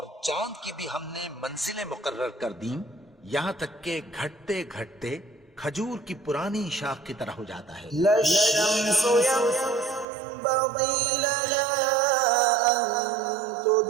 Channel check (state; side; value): drops out; left; at 10.1 s